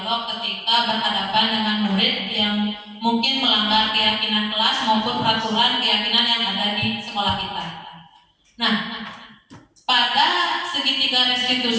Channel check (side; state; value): both; identical; correlation 1.00